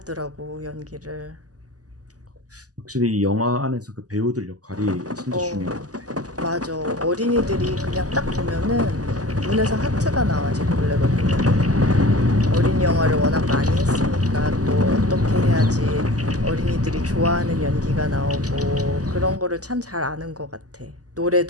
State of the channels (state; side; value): late; left; 0.67 ms